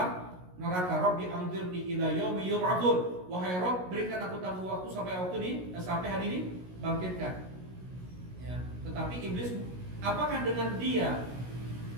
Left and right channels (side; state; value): left; late; 16 ms